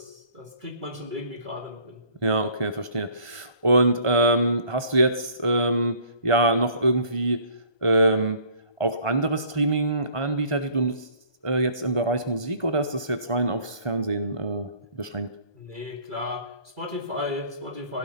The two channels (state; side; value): late; right; 1.2 ms